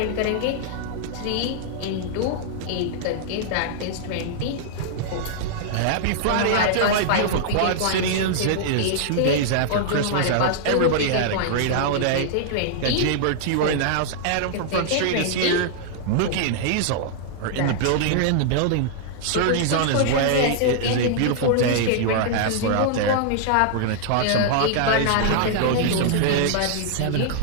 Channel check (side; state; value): both; different; correlation -0.01